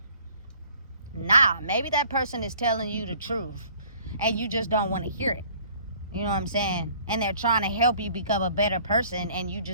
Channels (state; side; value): inverted; both; correlation -0.55